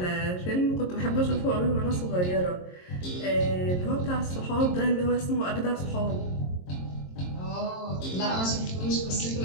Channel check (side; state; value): right; late; 22 ms